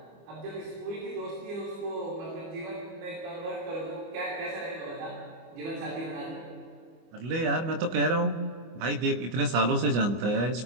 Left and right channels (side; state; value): left; late; 25 ms